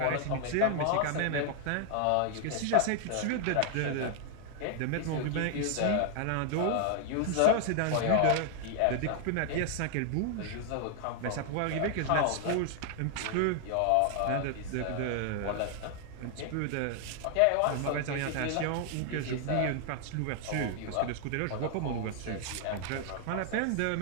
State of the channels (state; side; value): different; both; correlation 0.00